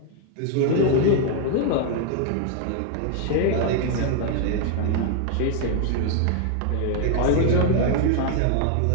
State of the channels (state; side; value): different; both; correlation 0.00